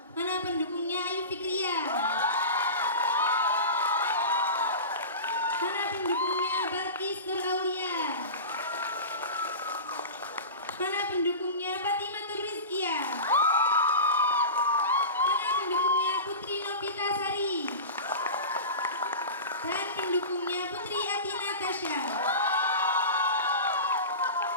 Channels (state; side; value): inverted; both; correlation -0.30